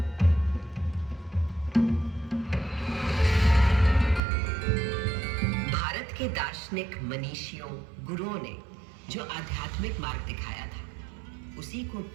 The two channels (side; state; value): left; drops out; at 4.2 s